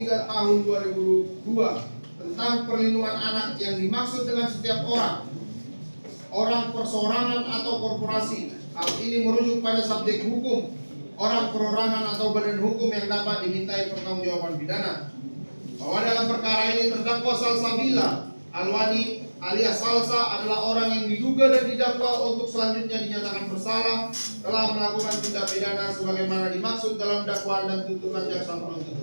3 tahun 2002 tentang perlindungan anak yang dimaksud dengan setiap orang perseorangan atau korporasi. Hal ini merujuk pada subjek hukum, orang perorangan atau badan hukum yang dapat dimintai pertanggungjawaban pidana. Bahwa dalam perkara ini terdakwa Salsabila Alwani alias Salsa adalah orang yang diduga dan didakwa untuk selanjutnya dinyatakan bersalah telah melakukan tindak pidana sebagaimana dimaksud dalam dakwaan dan tuntutan jaksa penuntut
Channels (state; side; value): inverted; both; correlation -1.00